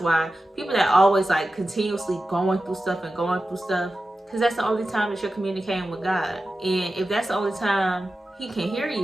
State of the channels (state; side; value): normal; both; correlation 0.93